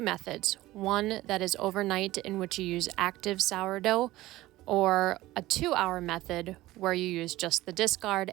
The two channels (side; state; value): left; quieter; 17.2 dB